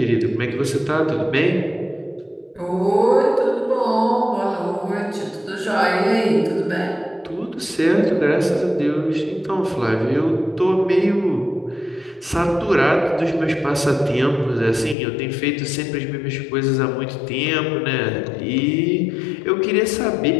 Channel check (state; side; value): drops out; right; at 15.0 s